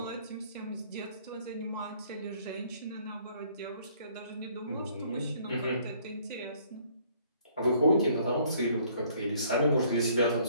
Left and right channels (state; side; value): inverted; both; correlation -0.61